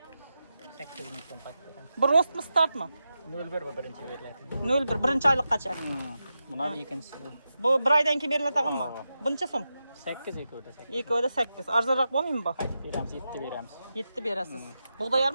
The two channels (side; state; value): both; inverted; correlation -0.89